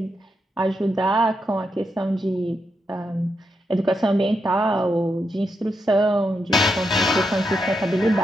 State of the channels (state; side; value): normal; both; correlation 0.83